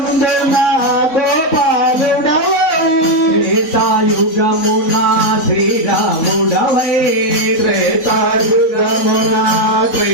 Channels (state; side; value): late; right; 3.9 ms